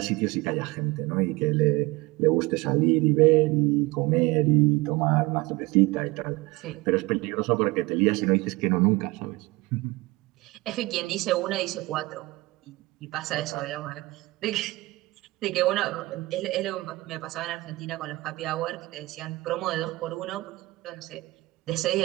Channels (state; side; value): quieter; left; 21.5 dB